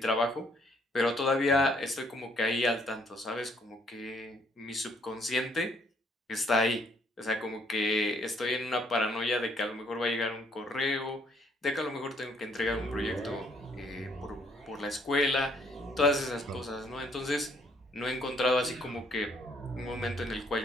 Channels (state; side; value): normal; both; correlation 0.67